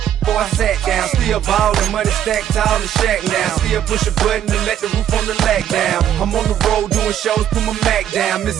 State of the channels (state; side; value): quieter; left; 10.5 dB